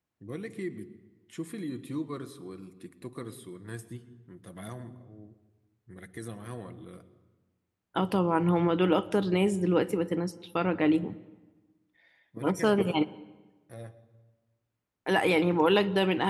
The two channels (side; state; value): both; identical; correlation 1.00